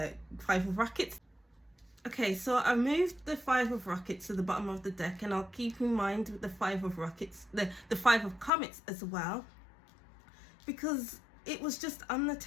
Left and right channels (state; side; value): drops out; right; at 8.5 s